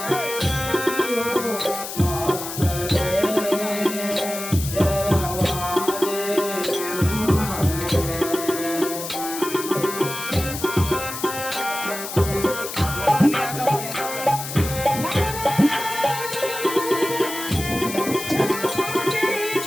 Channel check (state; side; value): noise; left; hiss, 8 dB below the sound